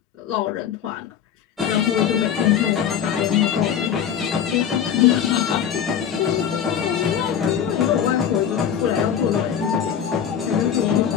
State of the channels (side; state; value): right; quieter; 8.7 dB